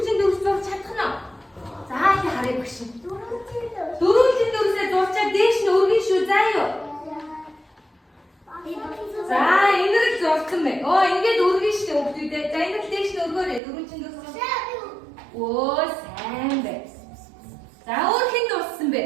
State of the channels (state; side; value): drops out; left; at 13.6 s